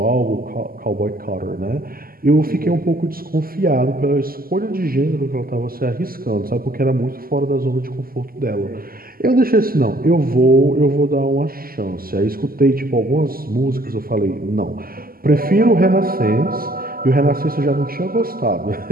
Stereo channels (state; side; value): late; left; 0.42 ms